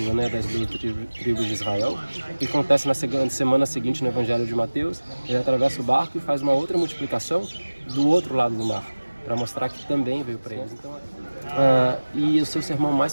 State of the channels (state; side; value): inverted; both; correlation -1.00